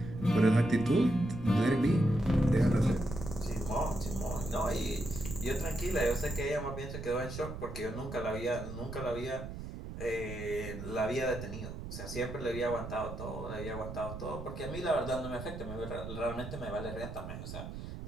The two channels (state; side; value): noise; right; rumble, 8 dB below the sound